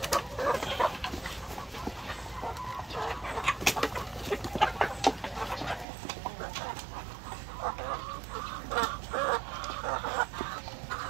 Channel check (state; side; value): drops out; left; at 5.9 s